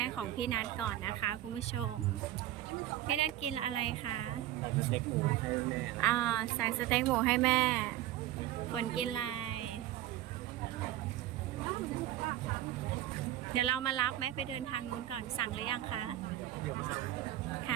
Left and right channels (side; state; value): left; quieter; 13.8 dB